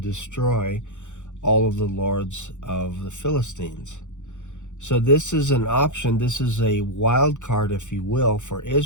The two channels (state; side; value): late; right; 0.85 ms